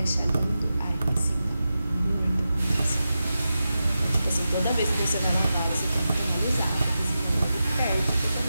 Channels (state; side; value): inverted; both; correlation -0.91